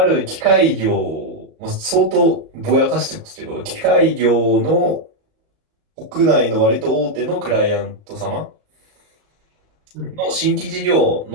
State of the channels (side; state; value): left; late; 38 ms